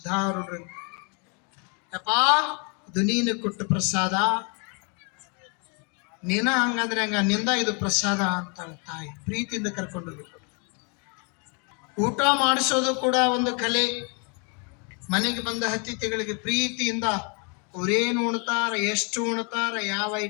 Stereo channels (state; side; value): quieter; right; 35.8 dB